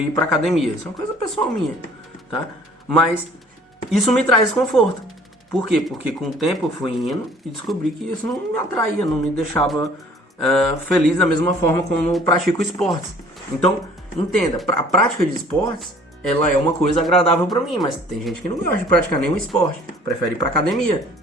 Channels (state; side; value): normal; both; correlation 0.53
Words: pra academia. Isso é uma coisa pessoal minha, tá? Mas isso me traz desconforto. Por quê? Porque com o tempo eu fui indo e descobri que isso não me atraía, não me deixava feliz da mesma forma como eu pratico esportes. Então, entenda, a prática de esportes, ela é uma coisa agradável pra mim, mas tem gente que não gosta de praticar nenhum esporte, prefere ir pra academia.